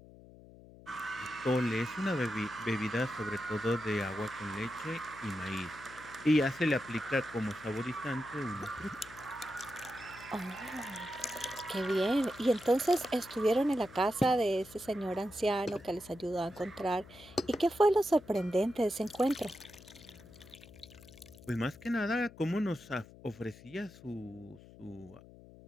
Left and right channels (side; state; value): left; noise; hum, 20 dB below the sound